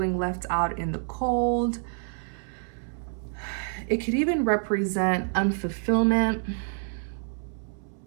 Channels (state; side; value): silent; left; 60 dB below the other